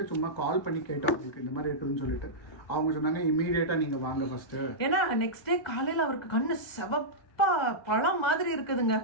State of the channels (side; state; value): right; late; 2.2 ms